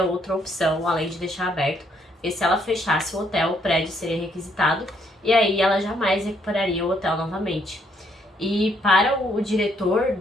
outra opção além de deixar aberto, e se ela fechasse o hotel, o prédio seria requisitado, e aí ela jamais recuperaria o hotel novamente. E para o diretor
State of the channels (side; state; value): both; normal; correlation 0.71